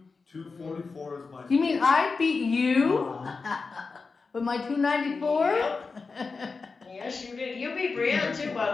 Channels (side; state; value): right; quieter; 4.4 dB